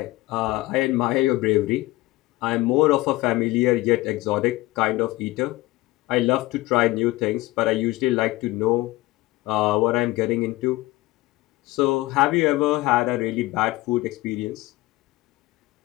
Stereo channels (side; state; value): right; quieter; 19.3 dB